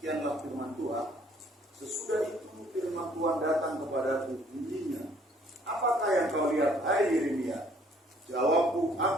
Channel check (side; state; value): both; normal; correlation 0.61